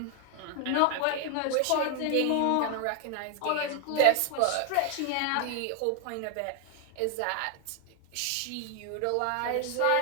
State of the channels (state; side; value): different; both; correlation 0.00